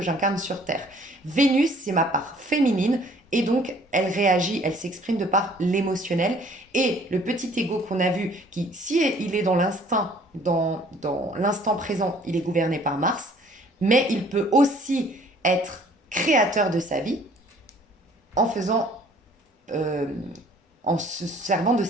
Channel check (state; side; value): normal; both; correlation 0.56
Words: j'incarne sur Terre. Vénus, c'est ma part féminine, et donc elle réagit, elle s'exprime de par l'émotionnel. Et le petit ego qu'on a vu, qui, si il est dans l'instinct, dans l'instant présent, il est gouverné par Mars, mais il peut aussi être créateur de sa vie en faisant, euh, en se servant de